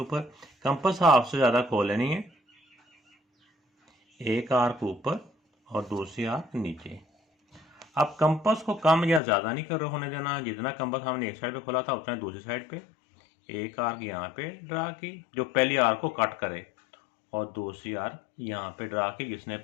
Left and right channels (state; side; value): drops out; right; at 9.2 s